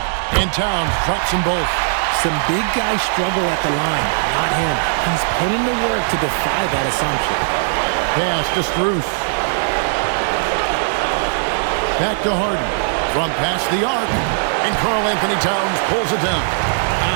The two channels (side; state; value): left; silent; digital silence